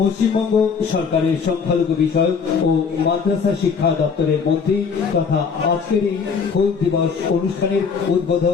সরকারের সংখ্যালঘু বিষয়ক ও মাদ্রাসা শিক্ষা দপ্তরের মন্ত্রী তথা আজকের এই হুল দিবস অনুষ্ঠানের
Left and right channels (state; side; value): quieter; right; 5.8 dB